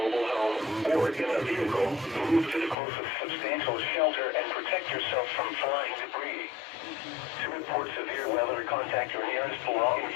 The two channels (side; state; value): right; drops out; at 2.8 s